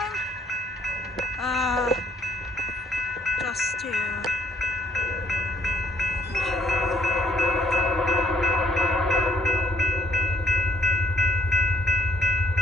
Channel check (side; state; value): both; normal; correlation 0.65